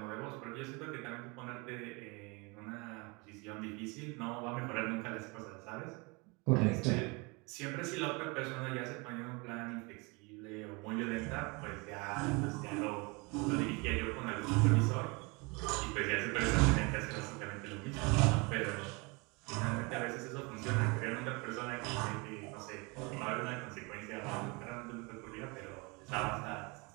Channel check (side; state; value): left; quieter; 28.3 dB